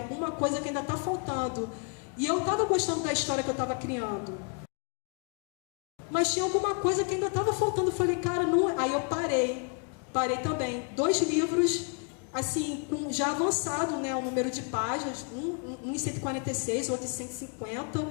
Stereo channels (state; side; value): quieter; right; 38.4 dB